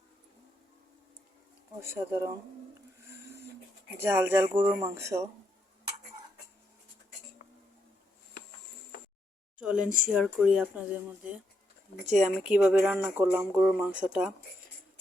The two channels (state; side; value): normal; both; correlation 0.79